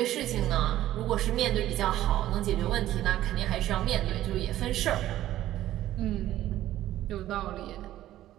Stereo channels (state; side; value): quieter; left; 13.7 dB